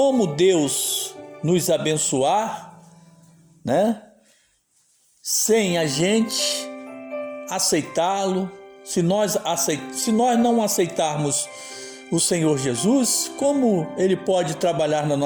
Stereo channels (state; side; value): identical; both; correlation 1.00